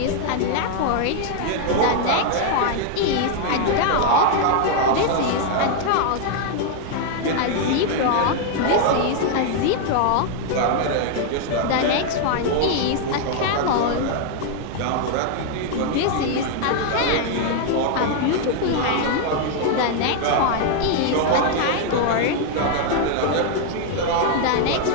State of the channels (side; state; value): both; different; correlation 0.00